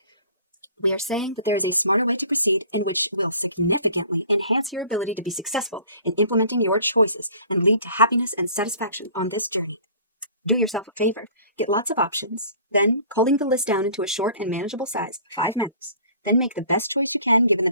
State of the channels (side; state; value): both; inverted; correlation -0.49